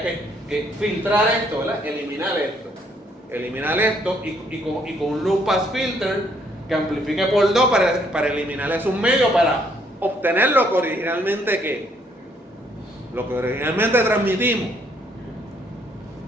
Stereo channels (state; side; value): normal; both; correlation 0.68